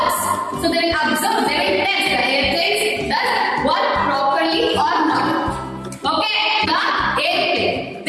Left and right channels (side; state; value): both; identical; correlation 1.00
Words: So they will observe, they will test the airplane does work properly or not. Okay, the airplane.